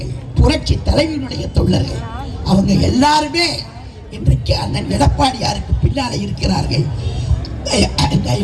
புரட்சி தலைவருடைய தொண்டர்கள். அவங்க எல்லாருமே இன்றைக்கு அண்ணன் எடப்பாடியாருக்கு பின்னாலே இருக்கிறார்கள்.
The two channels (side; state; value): both; identical; correlation 1.00